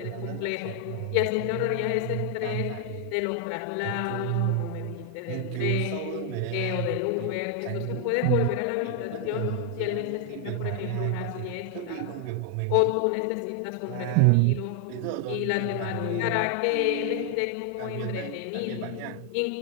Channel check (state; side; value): different; both; correlation 0.00